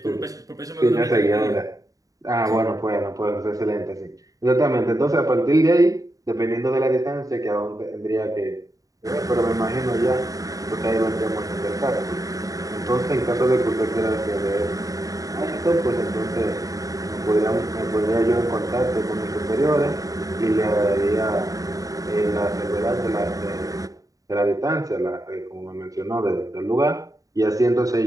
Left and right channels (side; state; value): left; late; 0.17 ms